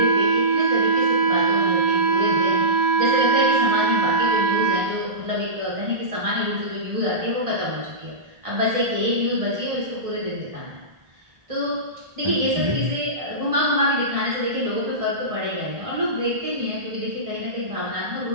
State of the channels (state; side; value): late; left; 1.6 ms